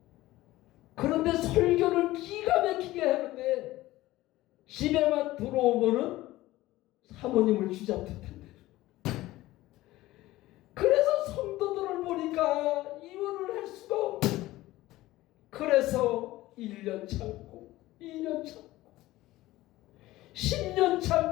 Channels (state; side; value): quieter; right; 17.2 dB